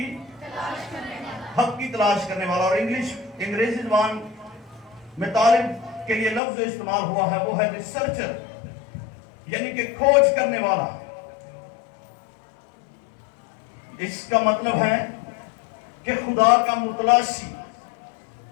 تلاش کرنے والا. اور انگریزی زبان میں طالب کے لیے لفظ جو استعمال ہوا ہے وہ ہے ریسرچر, یعنی کہ کھوج کرنے والا. اس کا مطلب ہے کہ خدا کا متلاشی,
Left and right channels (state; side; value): drops out; right; at 6.4 s